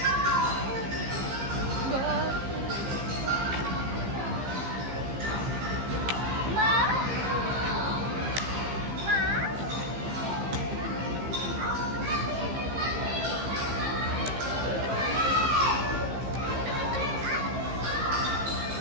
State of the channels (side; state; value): left; late; 15 ms